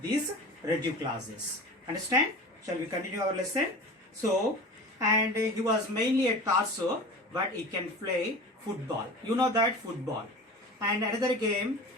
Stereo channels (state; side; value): normal; both; correlation 0.35